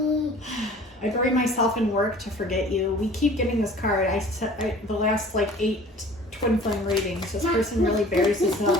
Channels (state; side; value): normal; both; correlation 0.47